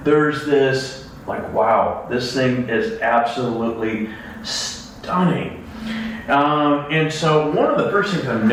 there's this, like, wow, this thing is absolutely stunning. And so one of the first things I'm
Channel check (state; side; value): identical; both; correlation 1.00